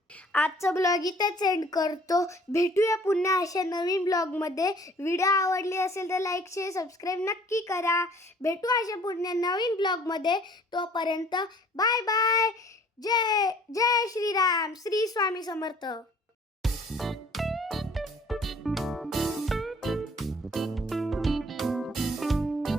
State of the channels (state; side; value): normal; both; correlation 0.54